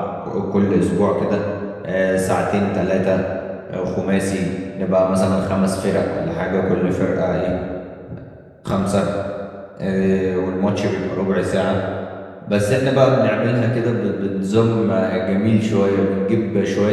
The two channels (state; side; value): identical; both; correlation 1.00